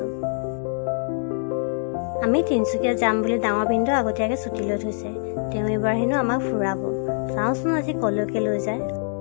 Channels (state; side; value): silent; right; digital silence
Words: আমি তিনচুকীয়া যাম বুলি ডাঙৰ বিন্দু আগতীয়াকৈ ছুটি লৈ থৈছে তেওঁ এবাৰ হেনো আমাক ফুৰাব চাওঁচোন আজি কলৈকে লৈ যায়